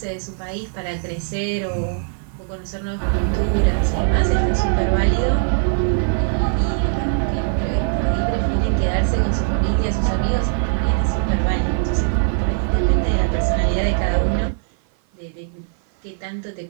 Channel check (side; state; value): left; silent; 55 dB below the other